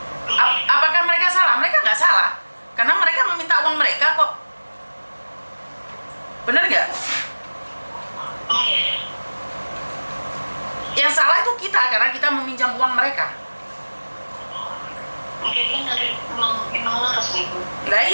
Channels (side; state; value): both; inverted; correlation -1.00